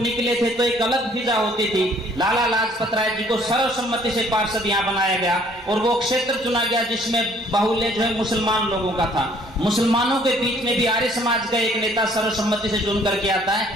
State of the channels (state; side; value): normal; both; correlation 0.60